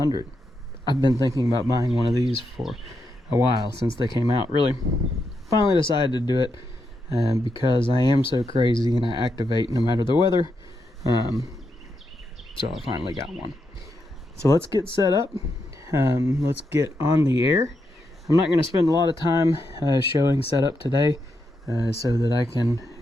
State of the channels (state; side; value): normal; both; correlation 0.83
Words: I've been thinking about buying one of these for a while since they came out. Really, finally decided to do it because I am so crazy and I activate no matter the weather. So I finally got one. So let's get set up. Let's get on the air. I'm not going to spend a lot of time showing setup today so that I can